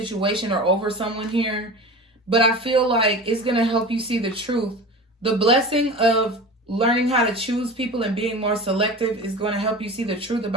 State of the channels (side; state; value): both; normal; correlation 0.33